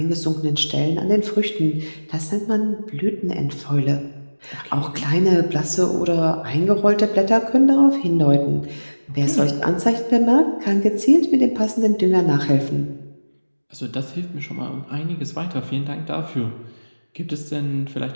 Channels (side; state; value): both; inverted; correlation -1.00